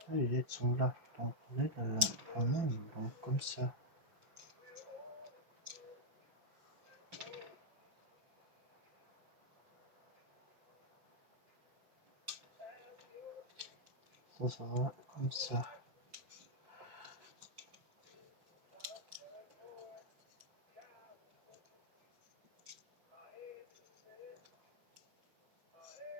Les LED sont là, donc LED en même, donc comme ça. Ça va comme ça.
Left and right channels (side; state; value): left; late; 6.0 ms